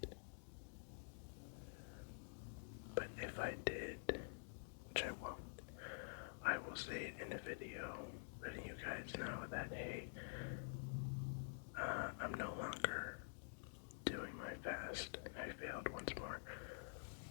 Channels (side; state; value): right; silent; digital silence